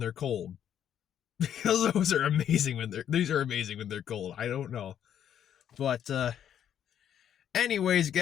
cold. Because those are amazing these are amazing when they're cold. I don't know. But, anyways,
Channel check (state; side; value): quieter; right; 9.7 dB